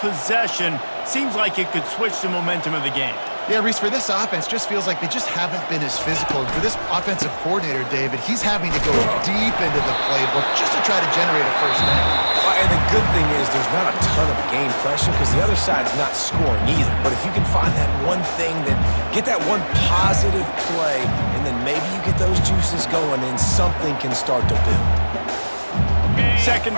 seems like it could switch the momentum of the game. Yeah, Reese, for this offense, just feels like they just haven't been as physical. For this offensive coordinator, David, he's having to go deep into the playbook just to try to generate a first down. And the good thing is there's not a ton of game pressure because the other side's not scoring either. But if you can find that one thing, that get that one positive play, and then maybe you get those juices going and something can start to build. 2nd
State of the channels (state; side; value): inverted; both; correlation -1.00